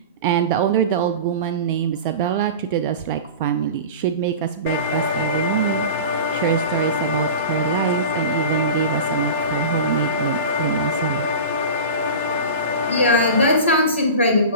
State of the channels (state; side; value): inverted; both; correlation -0.32